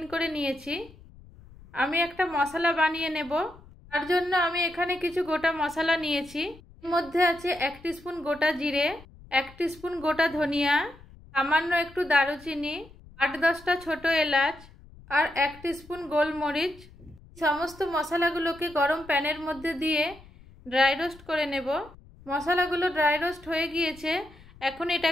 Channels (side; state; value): left; noise; rumble, 22 dB below the sound